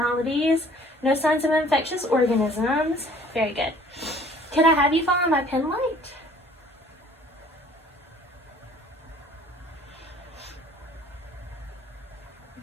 no signs of infectious organisms. Very good. Could I have you follow my pen light?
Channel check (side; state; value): both; normal; correlation 0.54